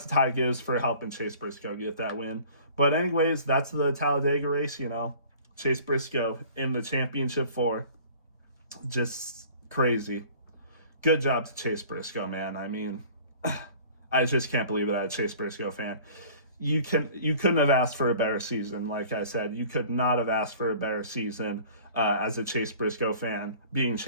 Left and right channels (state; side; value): inverted; both; correlation -0.48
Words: to Ty Gibbs for helping Chase Briscoe get that win. But anyways, that's the Talladega race. Chase Briscoe in the championship 4, just crazy. Good job to Chase Briscoe, man. I mean, I just can't believe that I'm a Chase Briscoe fan. You couldn't have asked for a better season. Like I said, you could not have asked for a better season as a Chase Briscoe fan, being